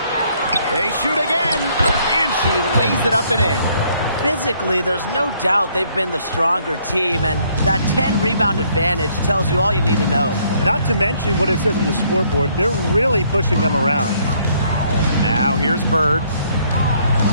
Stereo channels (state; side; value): inverted; both; correlation -0.66